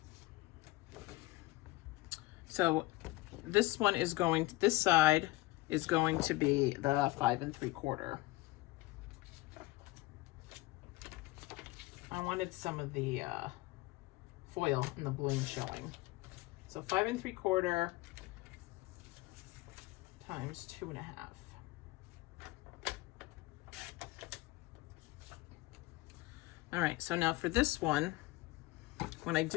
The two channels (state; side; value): quieter; right; 20.5 dB